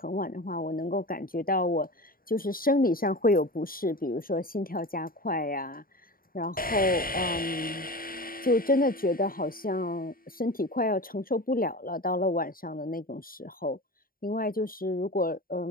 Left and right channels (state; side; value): late; right; 0.42 ms